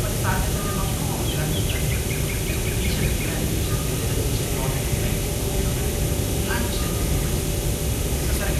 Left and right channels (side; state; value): both; identical; correlation 1.00